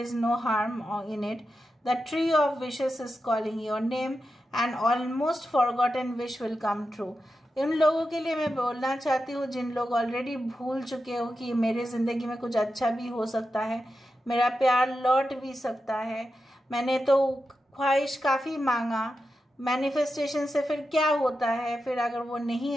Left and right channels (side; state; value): both; normal; correlation 0.90